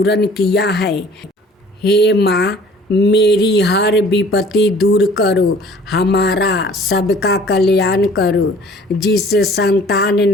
किया है। हे माँ, मेरी हर विपत्ति दूर करो, हमारा सबका कल्याण करो। जिसे संतान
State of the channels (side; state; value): both; normal; correlation 0.51